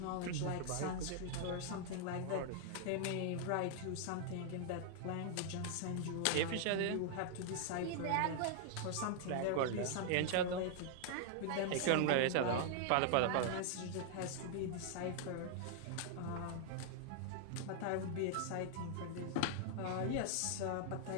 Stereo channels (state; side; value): different; both; correlation -0.01